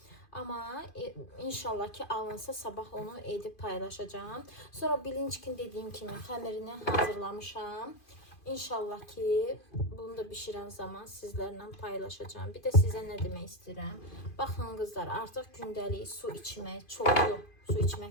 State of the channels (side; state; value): right; late; 2.5 ms